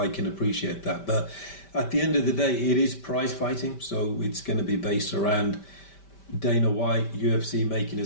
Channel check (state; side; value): late; right; 5.1 ms